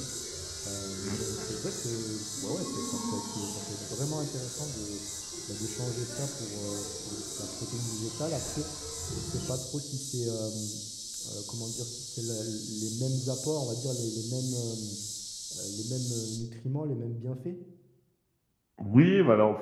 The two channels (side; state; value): both; identical; correlation 1.00